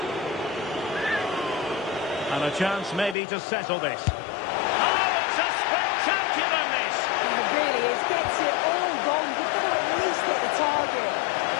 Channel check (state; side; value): drops out; right; at 3.2 s